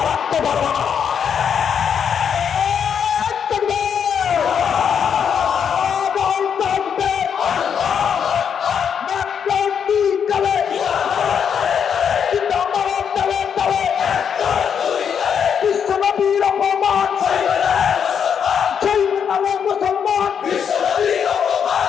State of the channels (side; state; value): right; quieter; 7.5 dB